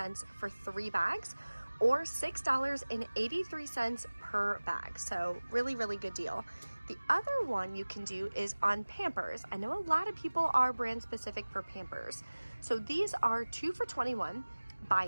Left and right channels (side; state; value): both; inverted; correlation -1.00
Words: for 3 bags, or $6.83 per bag. So really, really good deal. The other one you can do is on Pampers. I know a lot of people are brand specific for Pampers. So these are 2 for $21.